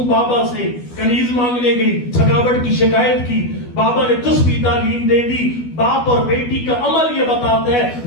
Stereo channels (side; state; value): right; late; 12 ms